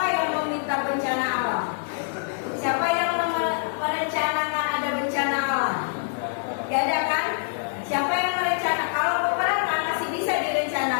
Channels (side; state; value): right; silent; digital silence